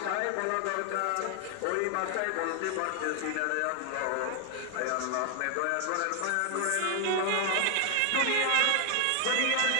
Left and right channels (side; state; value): both; different; correlation 0.00